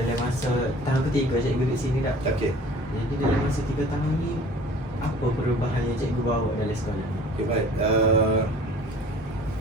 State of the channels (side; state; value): both; normal; correlation 0.47